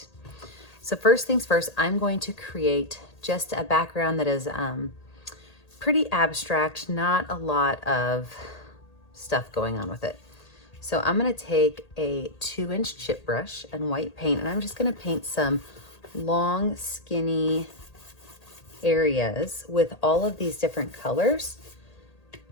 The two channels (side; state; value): right; late; 1.8 ms